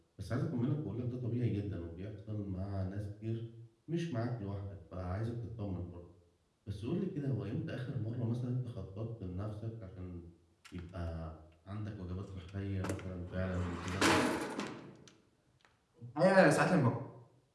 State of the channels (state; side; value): identical; both; correlation 1.00